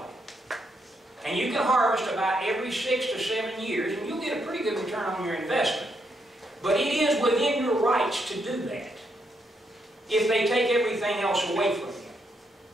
it. And you can harvest about every 6 to 7 years, and you'll get a pretty good return on your investment. But it is within your rights to do that if they take everything else away from you.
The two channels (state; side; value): normal; both; correlation 0.78